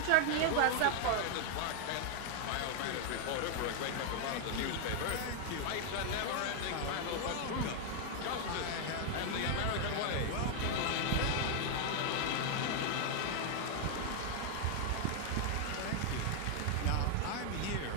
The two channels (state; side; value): different; both; correlation 0.00